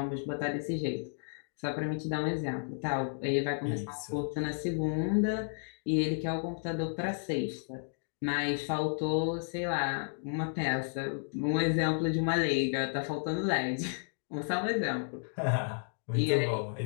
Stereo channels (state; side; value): silent; right; digital silence